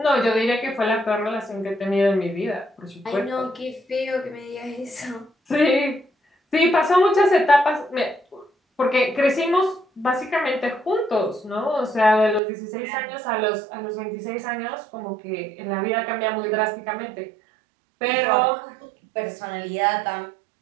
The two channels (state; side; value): drops out; left; at 12.4 s